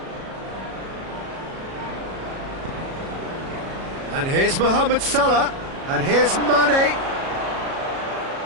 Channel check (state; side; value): late; left; 37 ms